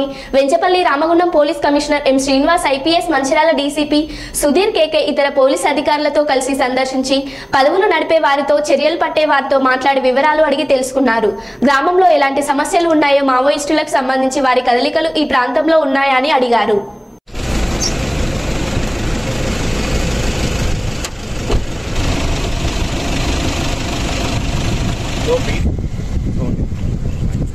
Venchapalli Ramagundam police commissioner M Srinivas IPS Mancherial DCP Sudheer KK ఇతర police అధికారులతో కలిసి సందర్శించి పదవులు నడిపే వారితో చర్యలు పట్టే వారితో మాట్లాడి వివరాలు అడిగి తెలుసుకున్నారు. గ్రామంలో ఎలాంటి సమస్యలు ఉన్నాయో, మావోయిస్టులకు సంబంధించి వారి కదలికలు ఈ ప్రాంతంలో ఉన్నాయా అని అడిగారు.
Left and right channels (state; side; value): identical; both; correlation 1.00